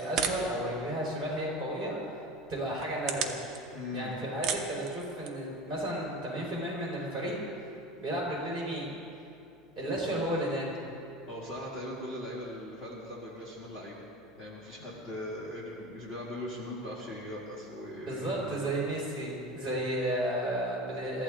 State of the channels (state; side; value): noise; left; hum, 28 dB below the sound